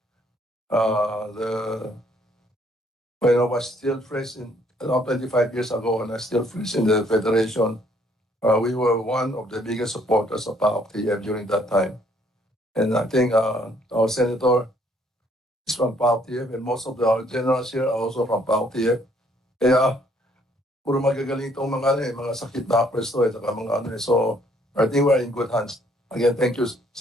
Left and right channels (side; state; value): both; normal; correlation 0.65